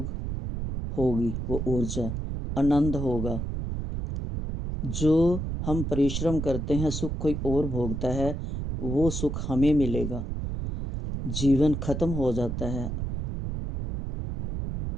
होगी वो ऊर्जा, आनंद होगा। जो हम परिश्रम करते हैं सुख कोई और भोगता है, वो सुख हमें मिलेगा। जीवन खत्म हो जाता है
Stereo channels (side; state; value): right; noise; rumble, 4 dB below the sound